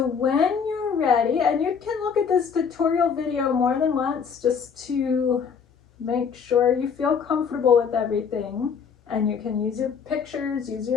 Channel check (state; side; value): quieter; right; 6.4 dB